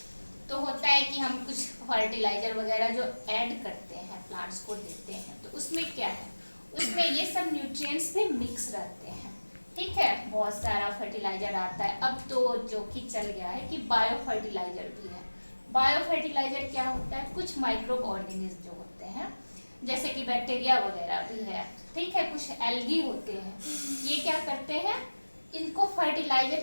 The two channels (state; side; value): inverted; both; correlation -1.00